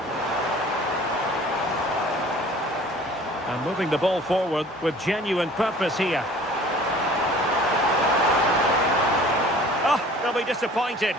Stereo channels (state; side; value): normal; both; correlation 0.48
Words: And moving the ball forward with genuine purpose here. Oh, they'll be disappointed.